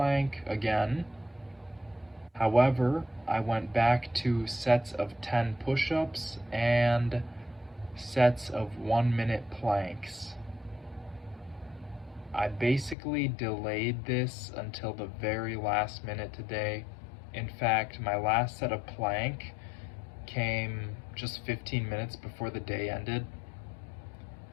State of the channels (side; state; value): right; drops out; at 13.0 s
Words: again. However, I went back to sets of 10 push-ups and sets of 1-minute planks. I basically delayed this until the very last minute today. In fact, my last set of plank came just 15 minutes before the day ended.